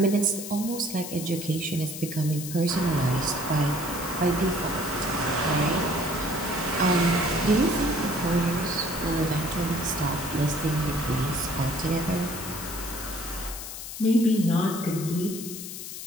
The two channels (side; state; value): left; noise; hiss, 9 dB below the sound